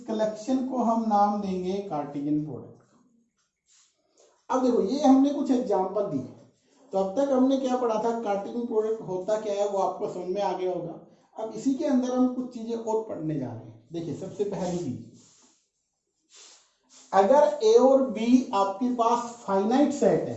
कलेक्शन को हम नाम देंगे कार्टेशियन प्रोडक्ट। अब देखो ये हमने कुछ एग्जांपल दिए, तो अब तक हमने क्या पढ़ा था, कार्टेशियन प्रोडक्ट होता क्या है वो आपको समझ में आ गया होगा। अब इसी के अंदर हम कुछ चीजें और पढ़ने जा रहे हैं। देखिए सबसे पहली चीज, अगर ए और बी आपके पास फाइनाइट सेट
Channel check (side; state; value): both; identical; correlation 1.00